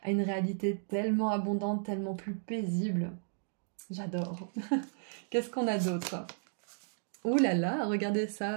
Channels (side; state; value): left; silent; digital silence